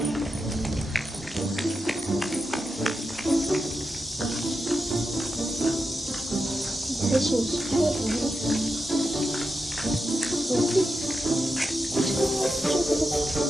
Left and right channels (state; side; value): normal; both; correlation 0.88